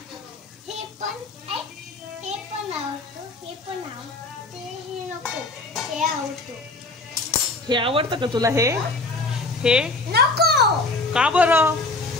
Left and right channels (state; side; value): quieter; right; 3.2 dB